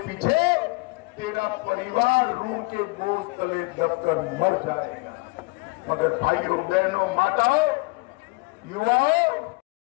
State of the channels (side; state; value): right; quieter; 26.0 dB